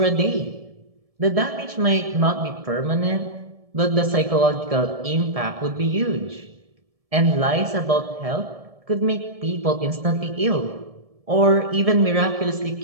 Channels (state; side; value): late; left; 1.7 ms